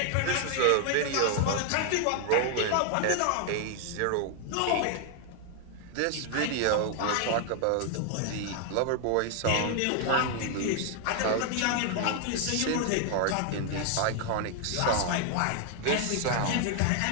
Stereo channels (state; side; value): different; both; correlation 0.00